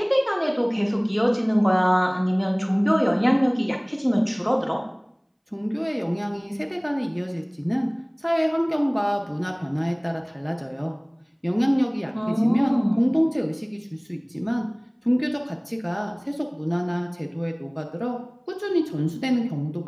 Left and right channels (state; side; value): identical; both; correlation 1.00